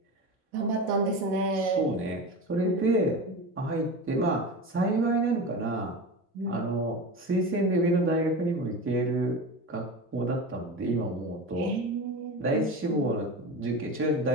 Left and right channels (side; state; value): both; normal; correlation 0.27